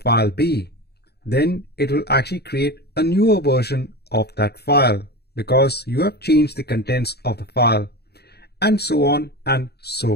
B. Then it will actually create a newer version of that file because you have changed the contents of the file, and so on and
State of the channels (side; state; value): right; late; 0.47 ms